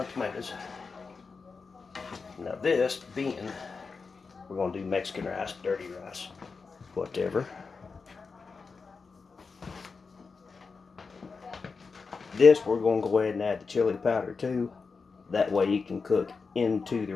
tomatoes, now this being, we're going to do Mexican rice, dirty rice, whatever. This, we're going to go ahead and add the chili powder too. That way you can cook into the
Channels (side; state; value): right; quieter; 4.8 dB